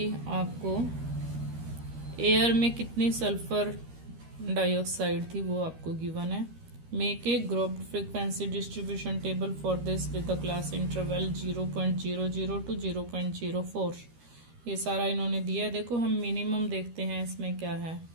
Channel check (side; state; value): left; late; 13 ms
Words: आपको एयर में कितनी सल्फर डाइऑक्साइड थी वो आपको गिवन है। Make a grouped frequency distribution table for this with the class interval 0.00 to 0.04. ये सारा इन्होंने दिया है। देखो हम मिनिमम देखते हैं इसमें क्या है।